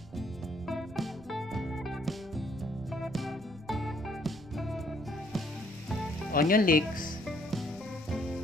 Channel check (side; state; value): right; noise; rumble, 20 dB below the sound